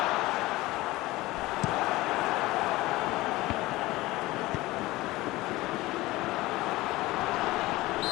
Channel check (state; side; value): quieter; right; 19.1 dB